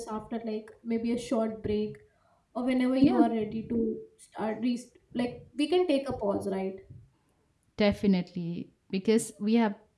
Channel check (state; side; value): identical; both; correlation 1.00